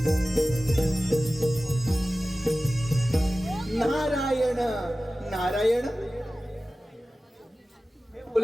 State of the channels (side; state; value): both; normal; correlation 0.96